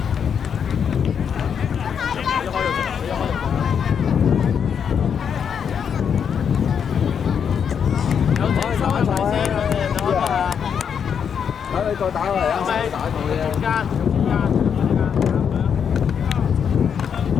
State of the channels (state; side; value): quieter; right; 7.4 dB